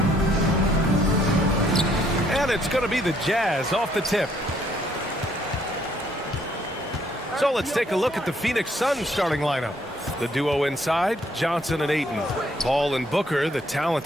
And it's going to be the Jazz off the tip. So let's take a look at the Phoenix Suns starting lineup. The duo inside, Johnson and Ayton. Paul and Booker, the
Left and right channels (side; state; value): both; normal; correlation 0.67